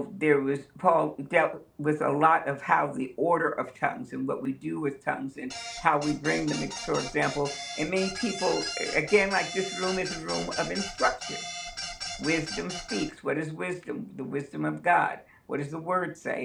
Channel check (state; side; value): identical; both; correlation 1.00